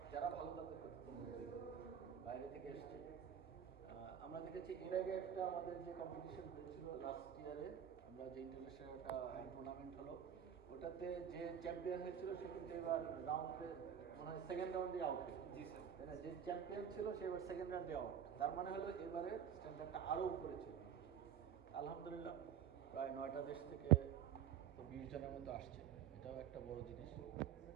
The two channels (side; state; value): left; quieter; 8.9 dB